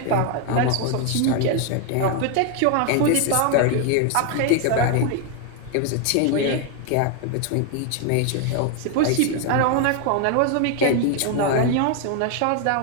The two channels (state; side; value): different; both; correlation 0.01